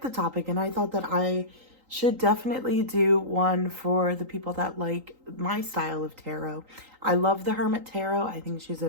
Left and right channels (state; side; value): late; left; 3.8 ms